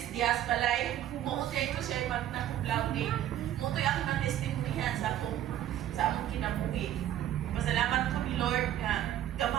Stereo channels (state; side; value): quieter; left; 12.1 dB